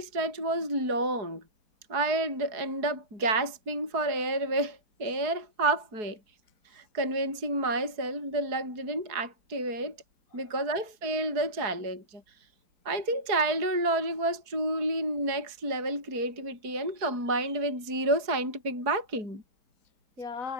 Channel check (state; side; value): late; left; 4.7 ms